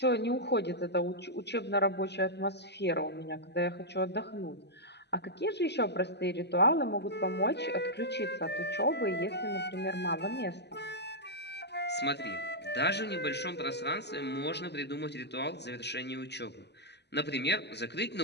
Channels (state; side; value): late; right; 0.50 ms